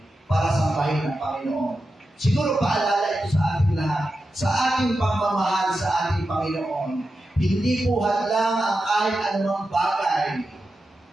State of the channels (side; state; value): both; normal; correlation 0.90